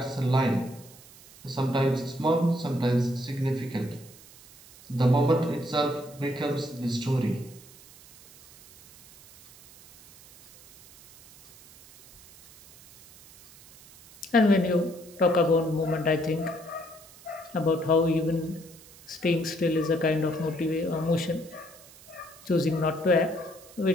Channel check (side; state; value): right; noise; hiss, 22 dB below the sound